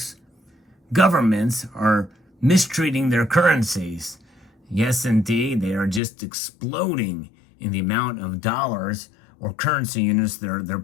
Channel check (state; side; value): drops out; right; at 6.0 s